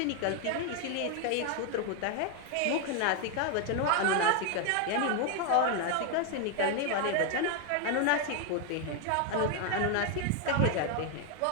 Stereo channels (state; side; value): different; both; correlation 0.01